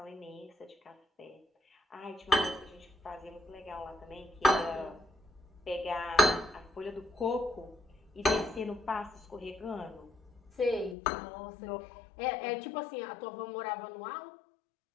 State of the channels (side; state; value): right; drops out; at 11.0 s